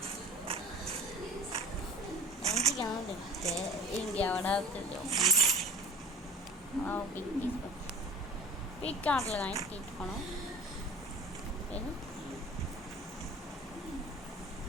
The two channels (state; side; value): normal; both; correlation 0.41